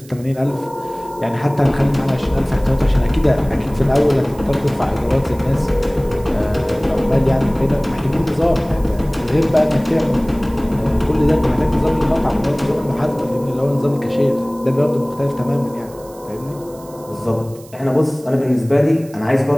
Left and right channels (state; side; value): noise; right; hiss, 23 dB below the sound